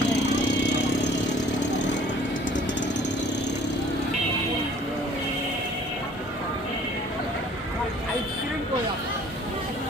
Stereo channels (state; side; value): normal; both; correlation 0.53